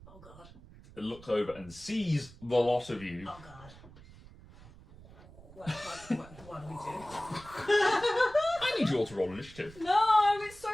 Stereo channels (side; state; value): right; noise; rumble, 20 dB below the sound